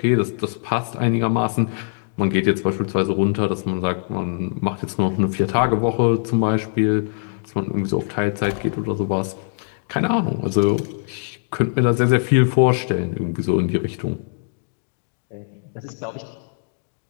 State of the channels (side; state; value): right; silent; digital silence